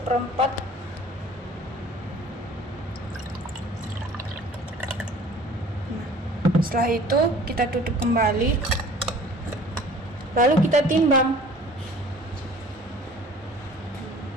Nah, setelah itu kita tutup kembali. Lalu kita timbang.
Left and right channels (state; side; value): normal; both; correlation 0.49